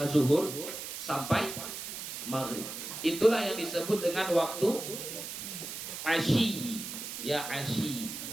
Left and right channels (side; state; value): right; noise; hiss, 7 dB below the sound